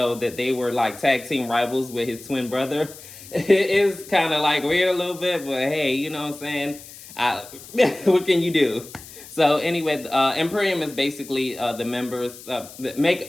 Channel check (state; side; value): noise; left; hiss, 17 dB below the sound